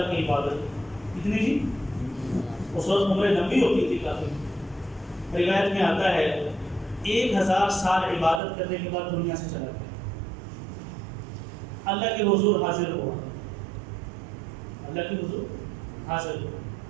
کی عبادت. کتنی جی؟ اس وقت عمریں لمبی ہوتی تھی کافی. روایت میں آتا ہے 1000 سال عبادت کرنے کے بعد دنیا سے چلا گیا. اللہ کے حضور حاضر ہوا، اللہ کے حضور حاضر ہوا.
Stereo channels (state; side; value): drops out; left; at 8.4 s